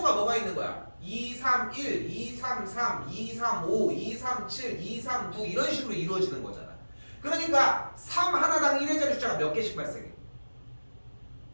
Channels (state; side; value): inverted; both; correlation -1.00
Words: 뭐가 있는 거야? 2, 3, 1, 2, 3, 3, 2, 3, 5, 2, 3, 7, 2, 3, 9 이런 식으로 이루어지는 거잖아. 그러니까 3 하나당 1의 자리 숫자가 몇 개씩 발생해?